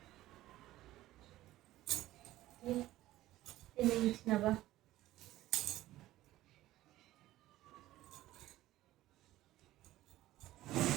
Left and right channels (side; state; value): left; quieter; 15.6 dB